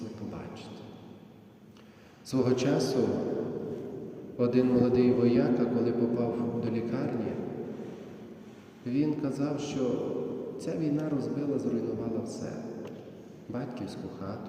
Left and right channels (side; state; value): both; identical; correlation 1.00